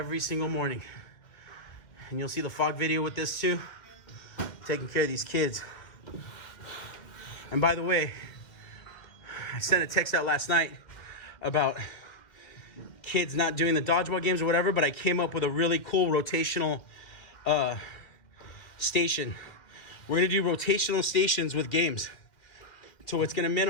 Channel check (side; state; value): right; late; 2.1 ms